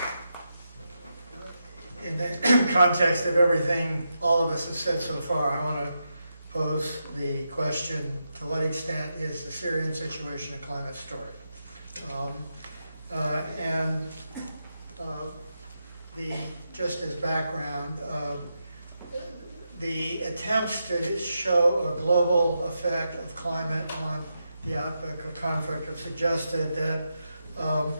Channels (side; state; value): both; inverted; correlation -0.86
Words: In the context of everything all of us have said so far, I want to pose the question, to what extent is the Syrian situation a climate story? Just as background, the attempts to show a global effect of climate on the outlook of conflict have suggested that